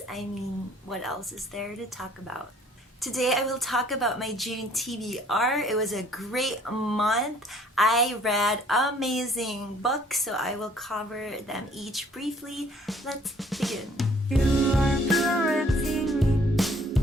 What else is there to talk about? Today I will talk about my June TBR. It was a great month. I read amazing books, so I will cover them each briefly. Let's begin. You are correcting me,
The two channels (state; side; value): normal; both; correlation 0.59